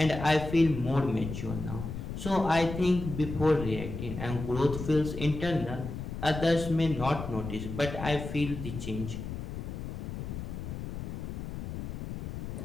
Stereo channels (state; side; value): noise; left; rumble, 6 dB below the sound